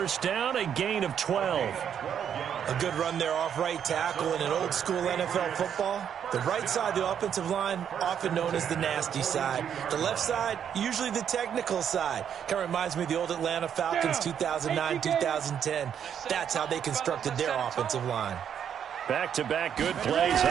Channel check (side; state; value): left; quieter; 8.6 dB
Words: down, a gain of 12. A good run there off right tackle in an old-school NFL football. The right side of the offensive line, often known as the nasty side. The left side, usually the technical side. Kind of reminds me of the old Atlanta Falcons 2009, 2010. That's how they constructed their offensive line. Back-to-back good plays